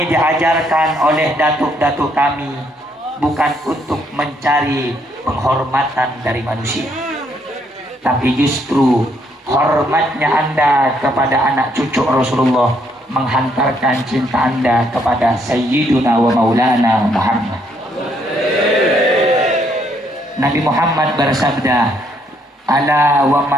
diajarkan oleh datuk-datuk kami bukan untuk mencari penghormatan dari manusia, tapi justru hormatnya Anda kepada anak cucu Rasulullah menghantarkan cinta Anda kepada Sayyiduna wa Maulana Muhammad. Nabi Muhammad bersabda, ala wa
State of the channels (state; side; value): normal; both; correlation 0.71